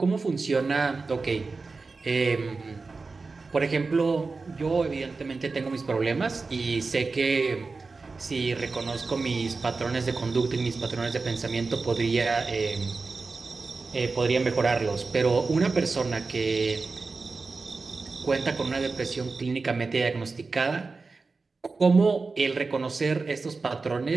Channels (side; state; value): left; quieter; 4.1 dB